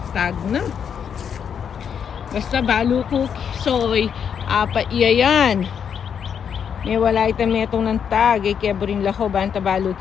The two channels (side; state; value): right; quieter; 7.6 dB